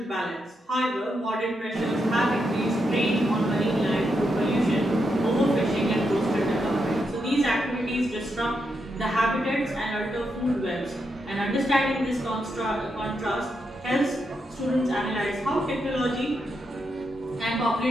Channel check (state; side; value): normal; both; correlation 0.83